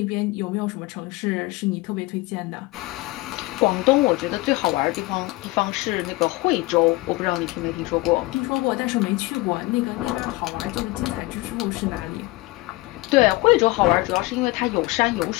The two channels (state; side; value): quieter; right; 21.4 dB